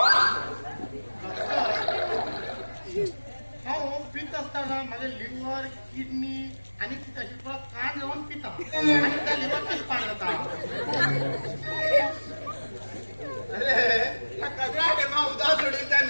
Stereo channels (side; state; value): both; inverted; correlation -1.00